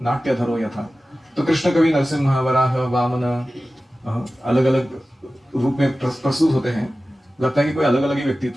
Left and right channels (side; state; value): both; normal; correlation 0.95